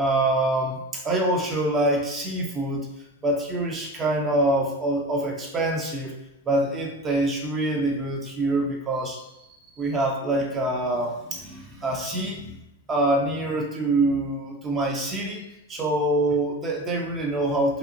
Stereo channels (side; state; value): both; normal; correlation 0.34